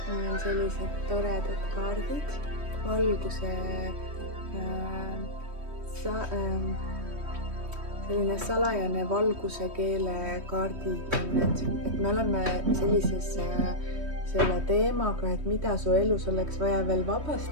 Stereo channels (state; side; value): late; left; 3.2 ms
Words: Meil on sellised toredad kaardid, valguse selline salajane valguse keele kaardid, et me oleme sellises selle teemaga, et mida su elus oleks vaja veel